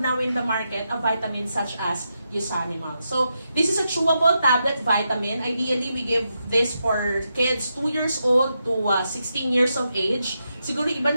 now in the market a vitamin such as Usanimals. So this is a chewable tablet vitamin. Ideally, we give this for kids 2 years old to 16 years of age. Siguro iba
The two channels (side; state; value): both; inverted; correlation -0.85